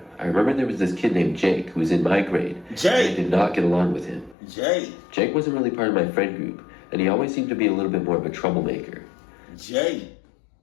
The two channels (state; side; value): drops out; right; at 4.4 s